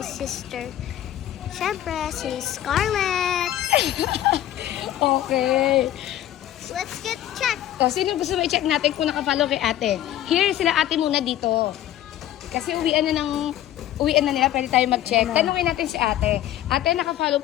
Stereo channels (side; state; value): right; quieter; 12.5 dB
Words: sister. Siyempre, si Scarlett. Okay. Let's get checked. So, sino gusto mo i-check natin kung nakafollow kay ate? Here, sila ate muna dito. Kasi uwian na nila, pwede tayo mag-check. Tanungin natin si ate. Ate, nakafollow